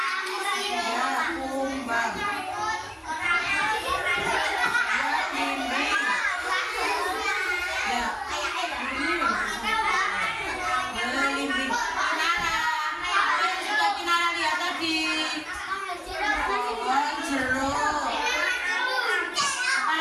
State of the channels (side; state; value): both; identical; correlation 1.00